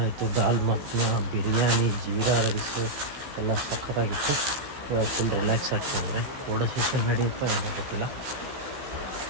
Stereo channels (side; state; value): left; late; 15 ms